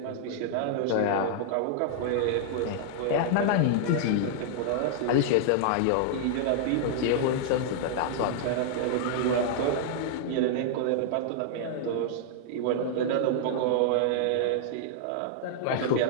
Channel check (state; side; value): different; both; correlation -0.01